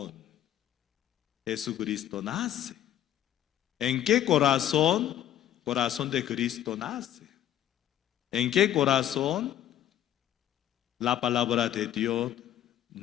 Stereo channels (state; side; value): quieter; right; 11.5 dB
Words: Jesucristo nace? ¿En qué corazón? Corazón de Cristo nace. ¿En qué corazón la palabra de Dios